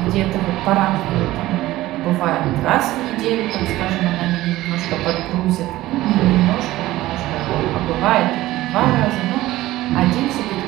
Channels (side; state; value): left; quieter; 16.6 dB